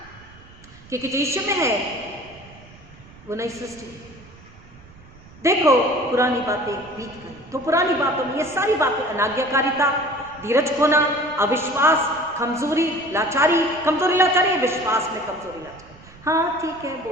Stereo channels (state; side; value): noise; right; rumble, 22 dB below the sound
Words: क्योंकि जो यीशु में है वो नई सृष्टि। देखो पुरानी बातें बीत गई, तो पुरानी बातों में ये सारी बातें, अनाज्ञाकारिता, धीरज खोना, अविश्वास, कमजोरी, लाचारी, कमजोरी लाचारी, विश्वास में कमजोरी लाचारी। हाँ ठीक है,